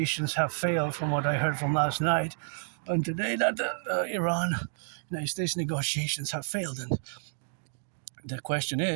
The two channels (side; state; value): left; silent; digital silence